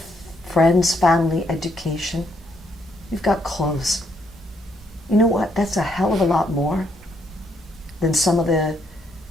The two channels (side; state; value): both; normal; correlation 0.73